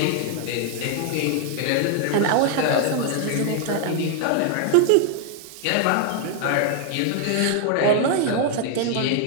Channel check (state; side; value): different; both; correlation 0.00